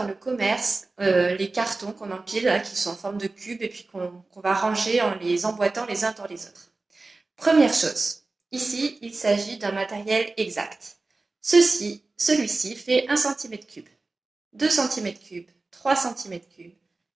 le commerce, les cartons qu'on empile, là, qui sont en forme de cube et puis qu'on va ranger en les emboîtant les uns dans les autres? Première chose, ici, il s'agit d'un matériel exact. Celui-ci fait 1 cm3, 2 cm3, 3 cm3,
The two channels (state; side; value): quieter; left; 3.4 dB